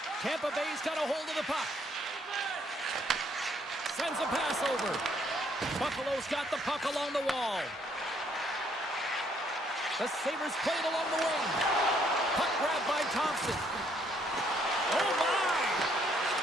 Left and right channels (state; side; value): normal; both; correlation 0.68